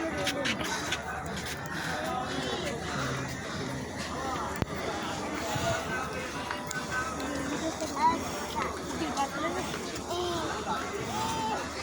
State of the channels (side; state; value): both; identical; correlation 1.00